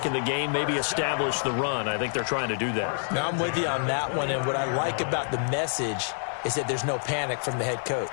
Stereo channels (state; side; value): silent; right; 60 dB below the other